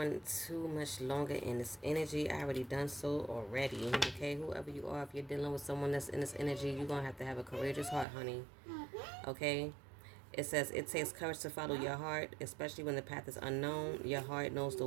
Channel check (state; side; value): drops out; left; at 8.1 s